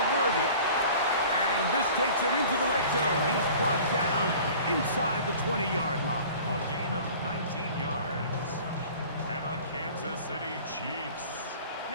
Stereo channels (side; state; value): both; inverted; correlation -0.44